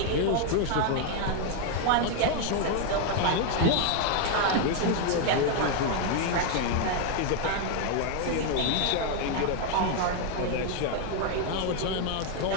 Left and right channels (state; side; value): different; both; correlation 0.01